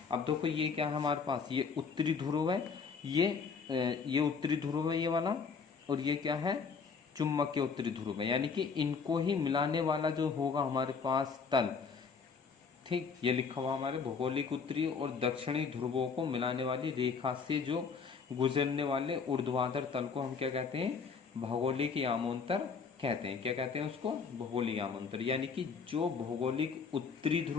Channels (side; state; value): right; quieter; 5.5 dB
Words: अब देखो ये क्या है हमारे पास, ये उत्तरी ध्रुव है, ये उत्तरी ध्रुव है ये वाला, और ये क्या है, चुंबकीय उत्तरी ध्रुव है, यानी कि इनको ही मिलाने वाला जो होगा हमारे पास तल, ठीक, ये लिखा हुआ हमारे भौगोलिक उत्तरी और दक्षिणी ध्रुवों को मिलाने वाली रेखा से जो गुजरने वाले ऊर्ध्वाधर तल को हम क्या कहते हैं, भौगोलिक यामोंतर कहते हैं। क्या कहते हैं उसको, भौगोलिक यामोंतर। यानी कि जो भौगोलिक उत्तरी